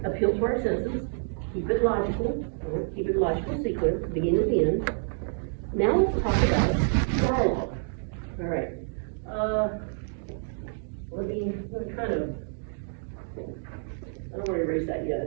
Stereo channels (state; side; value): silent; left; 59 dB below the other